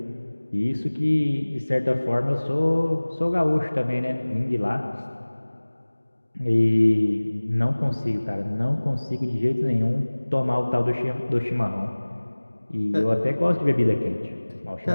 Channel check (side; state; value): both; inverted; correlation -1.00